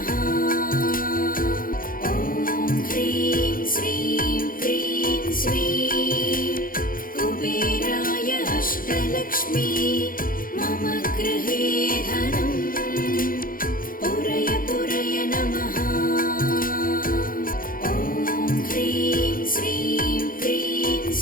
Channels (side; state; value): right; late; 0.41 ms